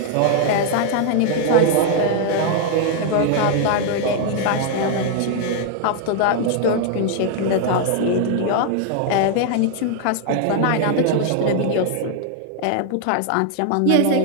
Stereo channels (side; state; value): both; different; correlation 0.00